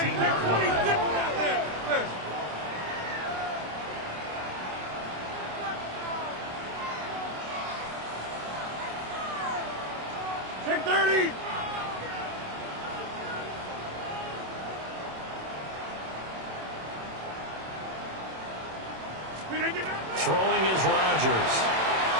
Check 30. Throwing is Rodgers.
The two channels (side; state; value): left; late; 27 ms